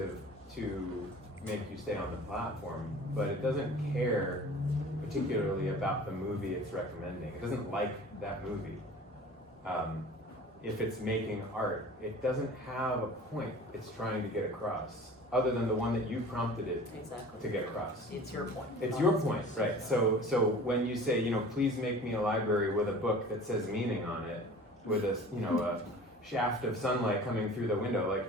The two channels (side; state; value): both; normal; correlation 0.43